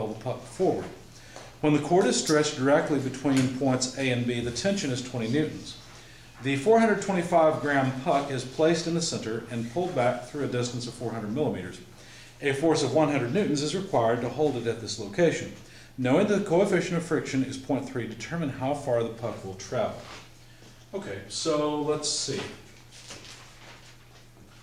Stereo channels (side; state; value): both; identical; correlation 1.00